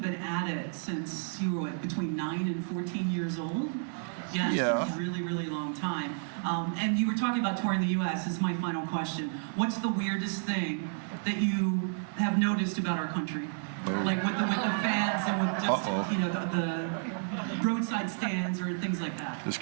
been at it since you were, between 9 and 14 years old? Yeah, Yeah. It's a really, really long time. And you were talking about touring the U.S. This is my final question. What's the weirdest thing that you have noticed about our country? Like with the fans and with just, the roadside stands or things like that. This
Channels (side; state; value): left; silent; digital silence